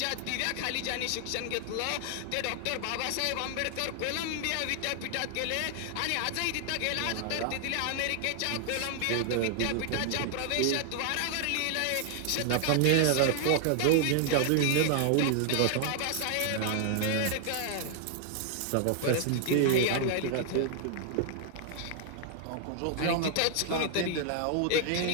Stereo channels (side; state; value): both; different; correlation 0.00